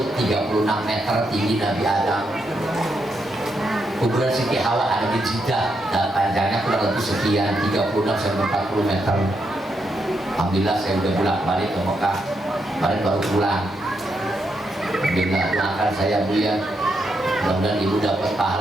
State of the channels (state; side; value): normal; both; correlation 0.81